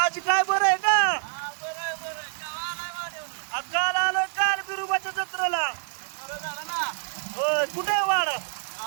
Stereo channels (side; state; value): left; silent; 60 dB below the other